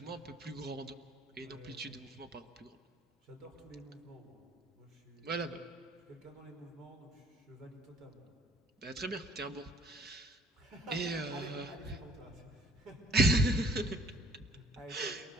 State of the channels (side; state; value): both; normal; correlation 0.57